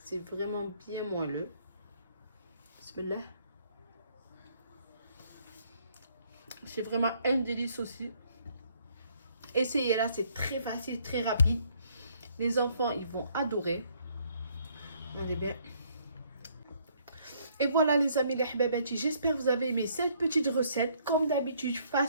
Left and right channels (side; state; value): both; inverted; correlation -0.66